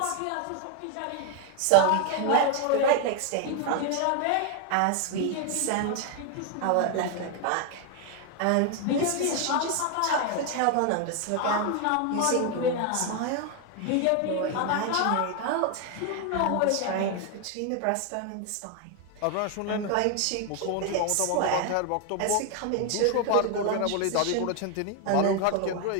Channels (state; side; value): different; both; correlation 0.01